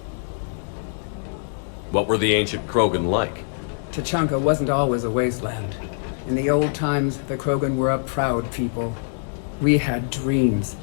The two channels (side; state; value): right; silent; digital silence